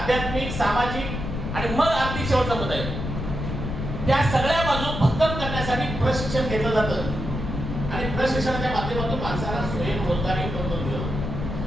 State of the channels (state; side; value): noise; left; rumble, 5 dB below the sound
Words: सामाजिक आणि मग आर्थिक शेवटचा मुद्दा आहे, त्या सगळ्या बाजू भक्कम करण्यासाठी प्रशिक्षण घेतलं जातं. आणि प्रशिक्षणाच्या माध्यमातून माणसाला स्वयंरोजगारी उपलब्ध दिलं.